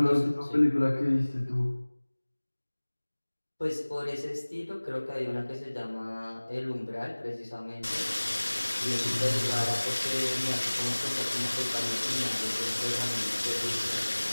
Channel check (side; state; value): both; inverted; correlation -1.00